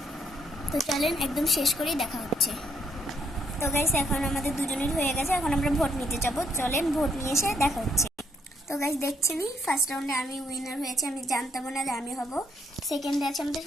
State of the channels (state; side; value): normal; both; correlation 0.71